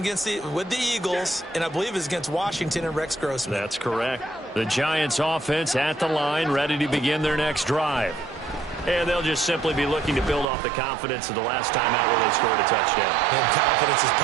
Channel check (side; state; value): left; drops out; at 10.5 s